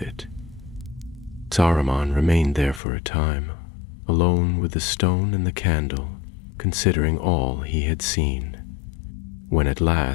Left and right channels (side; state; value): right; drops out; at 2.8 s